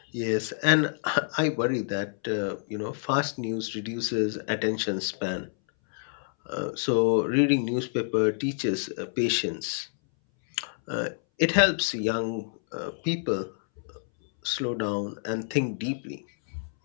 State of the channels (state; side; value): silent; right; 59 dB below the other